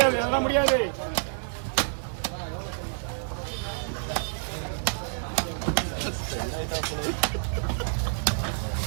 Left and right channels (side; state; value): left; silent; digital silence